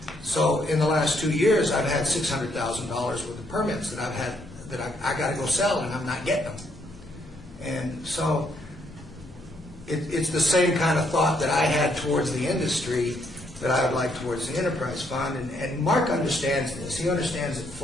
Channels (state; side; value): normal; both; correlation 0.73